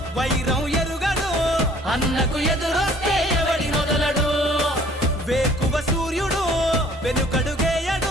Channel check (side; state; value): both; normal; correlation 0.55